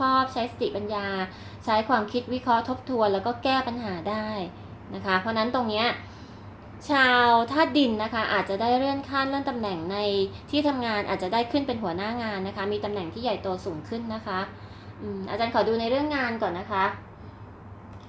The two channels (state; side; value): identical; both; correlation 1.00